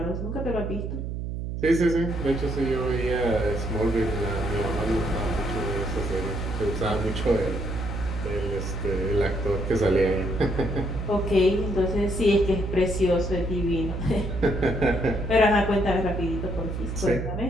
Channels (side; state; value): right; noise; hum, 4 dB below the sound